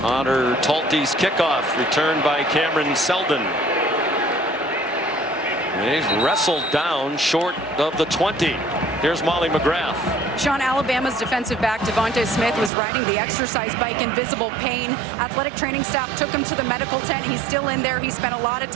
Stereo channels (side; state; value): left; drops out; at 12.7 s